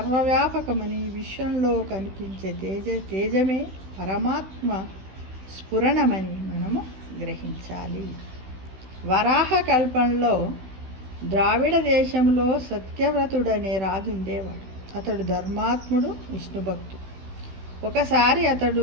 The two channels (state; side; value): late; left; 16 ms